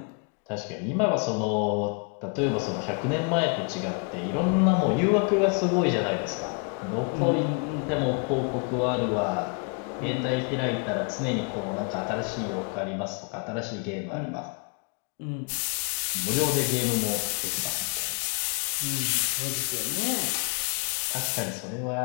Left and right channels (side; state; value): right; quieter; 35.9 dB